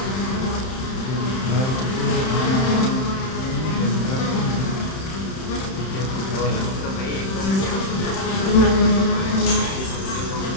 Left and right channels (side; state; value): right; late; 31 ms